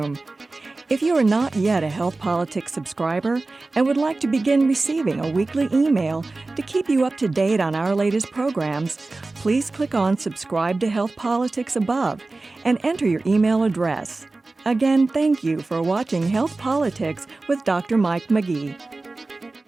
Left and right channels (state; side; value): quieter; left; 3.3 dB